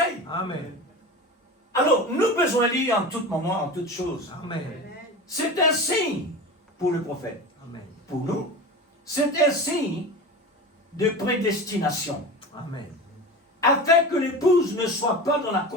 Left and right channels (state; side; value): normal; both; correlation 0.30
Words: Amen. Alors, nous besoin de lire en tout moment, en toutes choses. Amen. C'est un signe pour le prophète. Amen. Pour nous, c'est un signe de prédestination. Amen. Afin que l'épouse ne soit pas dans la